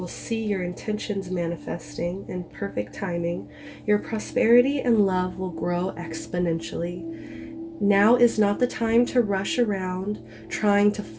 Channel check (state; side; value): identical; both; correlation 1.00